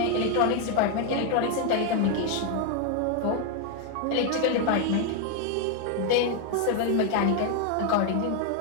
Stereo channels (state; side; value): different; both; correlation 0.01